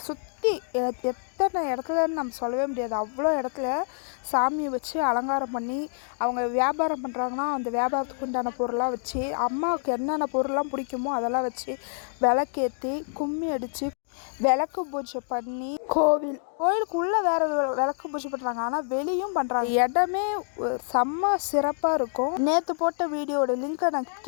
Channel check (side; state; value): right; silent; digital silence